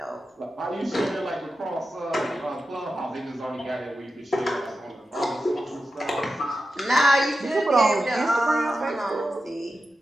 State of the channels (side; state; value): both; normal; correlation 0.91